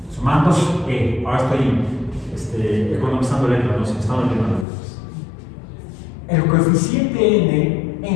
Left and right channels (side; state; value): right; drops out; at 4.7 s